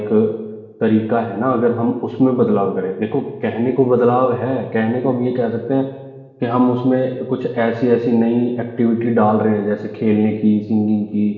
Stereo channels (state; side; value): identical; both; correlation 1.00